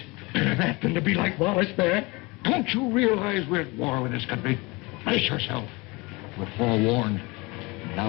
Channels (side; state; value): right; quieter; 24.5 dB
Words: That than to be like Wallace there. Don't you realize we're at war with this country? Brace yourself. We're forewarned.